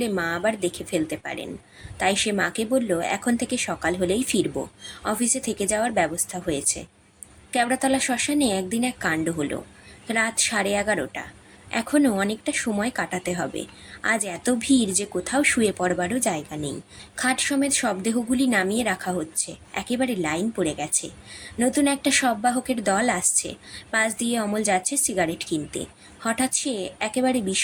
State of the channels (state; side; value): identical; both; correlation 1.00